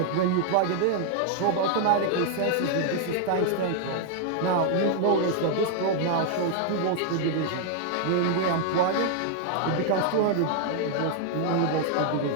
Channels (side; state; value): both; different; correlation 0.00